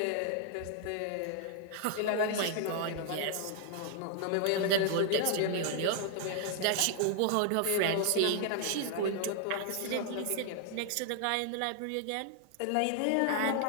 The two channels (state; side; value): different; both; correlation 0.00